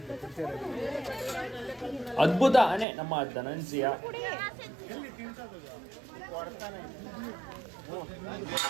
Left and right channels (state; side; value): drops out; left; at 2.9 s